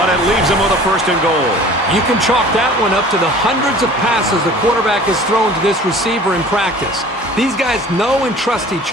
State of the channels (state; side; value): normal; both; correlation 0.46